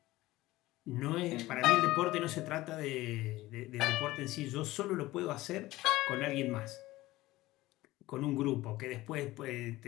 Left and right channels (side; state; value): right; quieter; 17.8 dB